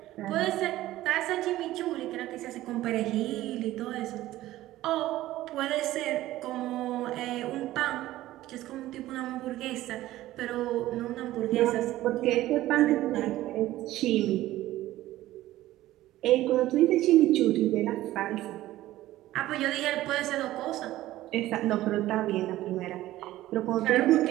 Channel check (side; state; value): left; quieter; 15.5 dB